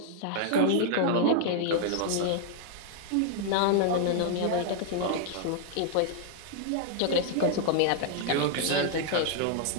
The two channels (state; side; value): different; both; correlation -0.01